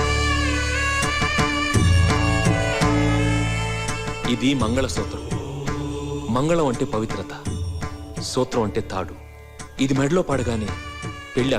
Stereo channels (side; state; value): both; identical; correlation 1.00